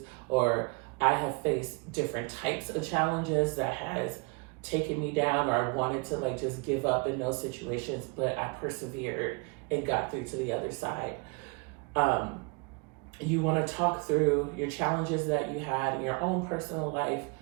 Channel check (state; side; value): quieter; left; 32.9 dB